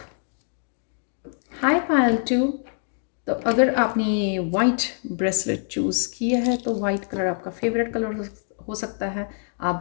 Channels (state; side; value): silent; right; 60 dB below the other